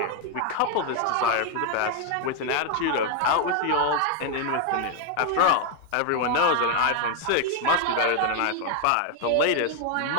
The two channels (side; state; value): both; different; correlation 0.01